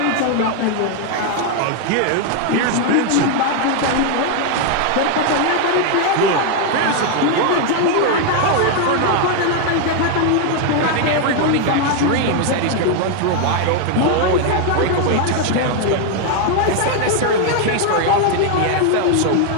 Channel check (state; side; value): different; both; correlation 0.01